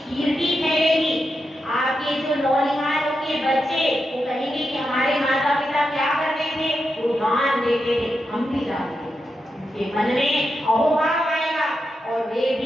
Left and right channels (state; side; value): normal; both; correlation 0.87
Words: कीर्ति फैलेगी, आपके जो नौनिहाल के बच्चे वो कहेंगे कि हमारे माता पिता क्या करते थे, वो दान देते थे, हम भी जानते हैं, उनके मन में अहोभाव आएगा और वे